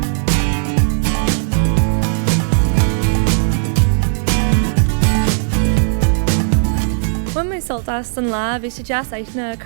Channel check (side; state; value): left; silent; 67 dB below the other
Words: When my soltas an lá, bhí sé deas aithne